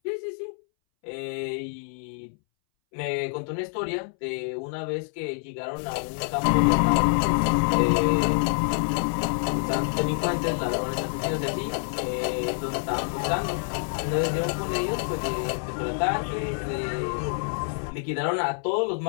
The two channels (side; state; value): right; silent; 60 dB below the other